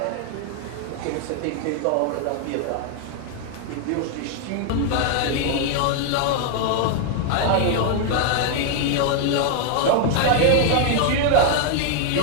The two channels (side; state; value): both; different; correlation 0.00